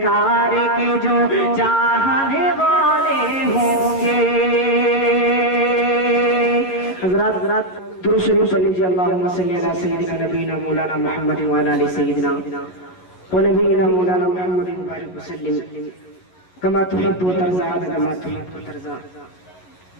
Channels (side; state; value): right; late; 11 ms